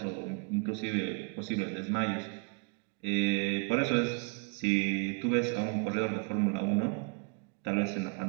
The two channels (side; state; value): left; quieter; 33.1 dB